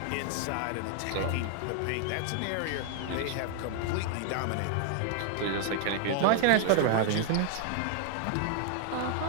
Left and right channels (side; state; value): both; different; correlation 0.00